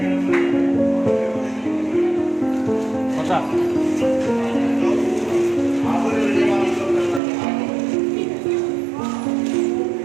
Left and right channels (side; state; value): left; drops out; at 7.2 s